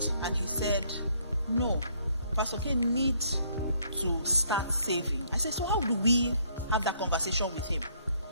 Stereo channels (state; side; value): inverted; both; correlation -0.66